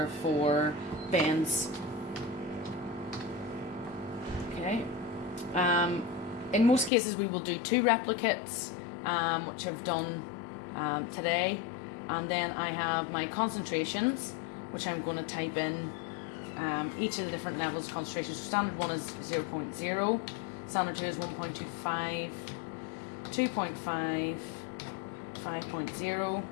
for bends. Okay. In most cases, we will do 2 replicates, which I've done today, and then I have my concentrations, which I'm going to type in each of the different levels of concentration. So standard 1 is 0.0, standard 2 is 1.25, 2.5, 5.0,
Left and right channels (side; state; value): right; drops out; at 6.9 s